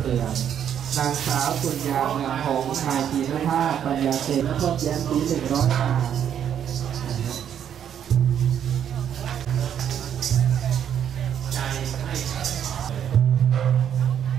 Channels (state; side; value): quieter; left; 9.2 dB